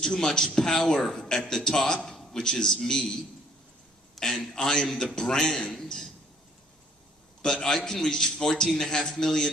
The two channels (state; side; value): normal; both; correlation 0.59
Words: much power at the top, which is me, and I am the brand, but I can reach 14.5